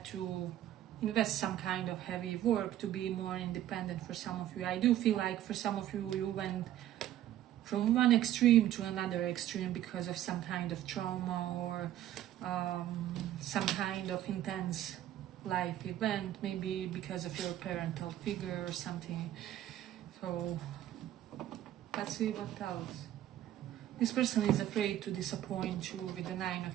to invest some kind of heavy work to be more independent for some of you. I do feel like for some of you, you went from one extreme to another extreme because of some kind of trauma or some kind of intense life event, maybe because of your parental figure or something. So let's see what else. This person is afraid to disappoint you with the 9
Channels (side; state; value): left; quieter; 12.5 dB